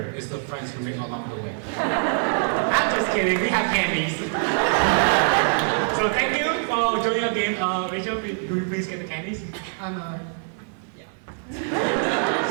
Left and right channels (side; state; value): left; silent; 63 dB below the other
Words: is the friends who make along the way. I'm just kidding, we have candies. So thank you for joining our game. Rachel, do you please get the candies?